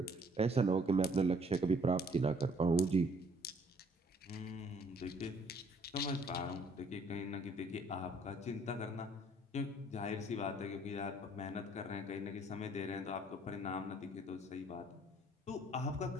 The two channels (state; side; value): normal; both; correlation 0.61